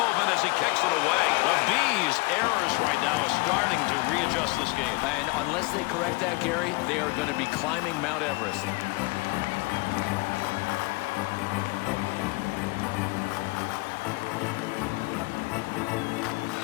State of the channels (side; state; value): right; quieter; 25.3 dB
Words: as he kicks it away. The Bees' errors right now are starting to readjust this game. And unless they correct that, Gary, they are going to be climbing Mount Everest.